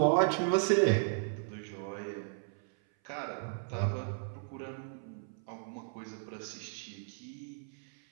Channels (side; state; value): left; silent; 54 dB below the other